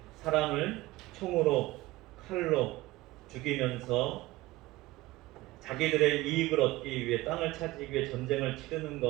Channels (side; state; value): left; quieter; 18.8 dB